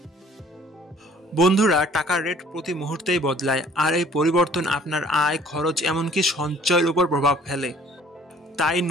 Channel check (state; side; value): normal; both; correlation 0.55